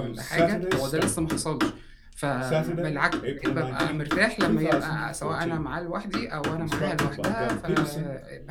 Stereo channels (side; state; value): both; identical; correlation 1.00